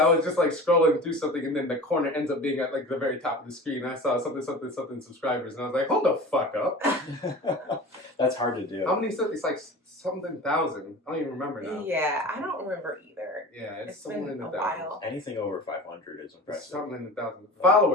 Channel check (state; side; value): normal; both; correlation 0.36